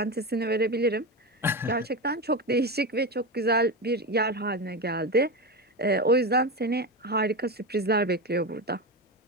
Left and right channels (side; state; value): both; normal; correlation 0.18